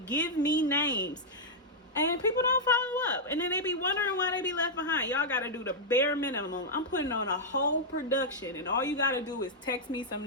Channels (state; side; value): normal; both; correlation -0.06